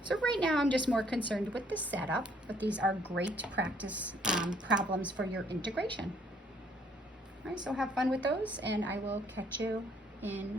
So right now I'm just more concerned with the setup, but these are great practice problems for your integration. All right, so have fun with those, and I will catch you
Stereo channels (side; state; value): both; normal; correlation 0.64